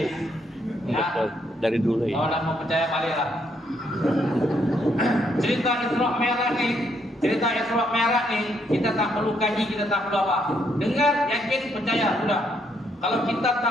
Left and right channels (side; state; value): both; normal; correlation 0.73